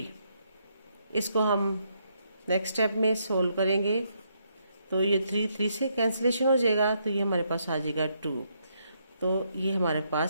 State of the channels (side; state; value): both; inverted; correlation -0.75